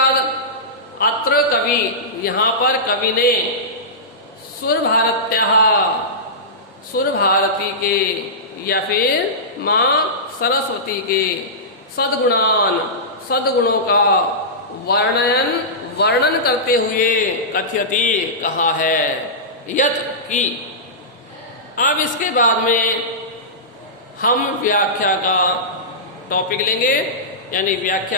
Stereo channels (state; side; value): normal; both; correlation -0.17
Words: अत्र कवि, यहाँ पर कवि ने सुर भारती के या फिर माँ सरस्वती के सद्गुणों का वर्णन करते हुए कथयति कहा है, यत की। अब इसके बाद में हम व्याख्या का टॉपिक लेंगे, यानी